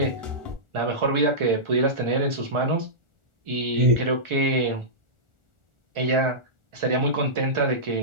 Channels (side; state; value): left; late; 1.4 ms